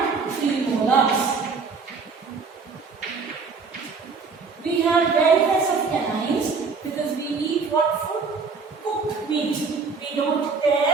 premolars. We have various of canines because we eat what food? Cooked meat. We don't tear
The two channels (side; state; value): left; quieter; 4.8 dB